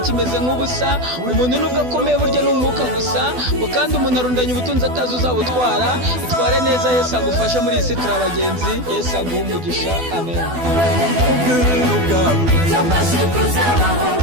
kimeze nk'ubusa umuntu nubwo akomeye burya n'umwuka gusa kandi umuntu arundanya ubutunzi atazi uzabutwara itware neza Yesu agufasha muri iyi si turi abagenzi Yesu aguha umugisha amen.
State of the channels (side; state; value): left; late; 12 ms